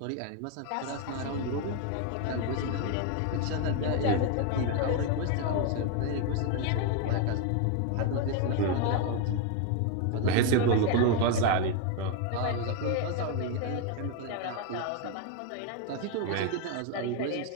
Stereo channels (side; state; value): both; different; correlation 0.01